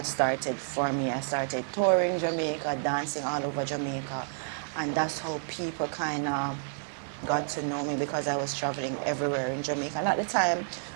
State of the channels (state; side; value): silent; left; digital silence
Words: started for me. I started touring Jamaica, dancing all over Jamaica. And that's how people kind of got to know me, because I was traveling everywhere in Jamaica. And at the time,